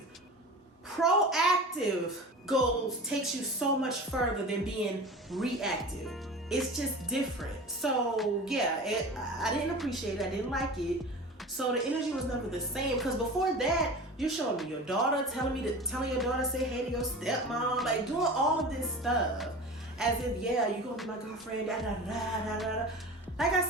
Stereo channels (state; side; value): normal; both; correlation 0.35